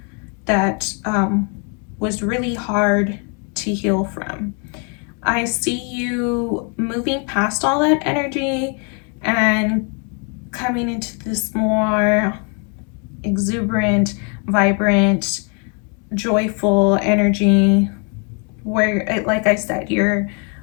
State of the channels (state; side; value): quieter; right; 38.0 dB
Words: that was really hard to heal from. I see you moving past all that energy and coming into this more exuberant, vibrant, joyful energy where, like I said, you're